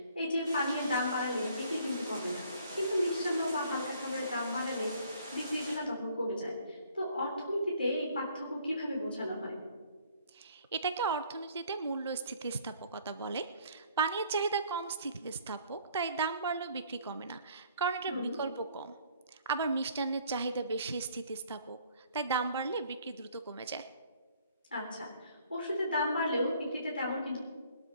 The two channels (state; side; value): inverted; both; correlation -0.60